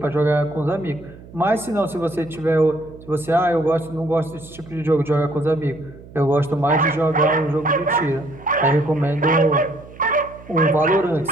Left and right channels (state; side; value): noise; right; hum, 19 dB below the sound